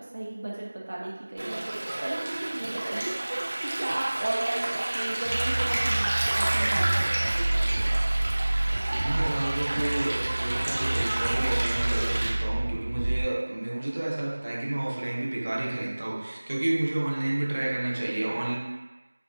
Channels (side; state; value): both; inverted; correlation -1.00